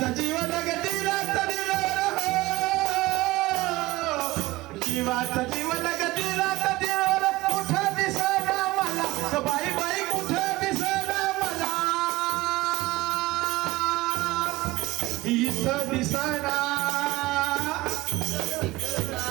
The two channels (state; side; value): quieter; left; 19.6 dB